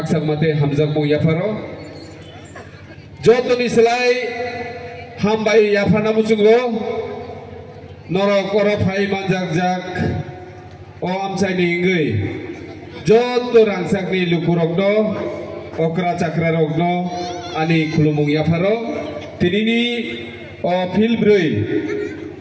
mate hamzak mo yaparo joto ni selai hambai yapana musungo norok oro phai manjak jak o amsai ni ngai joto rangsak ni lukurogno okra chakra rogno ani khulumung yaparo tinini o filbrui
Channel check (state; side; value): identical; both; correlation 1.00